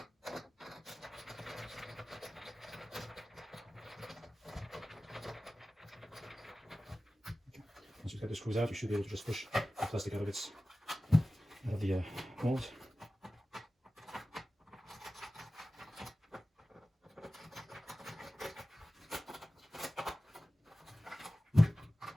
Once you cut the screws out, you should be able to just push the plastic out of the mold.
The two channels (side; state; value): both; normal; correlation 0.96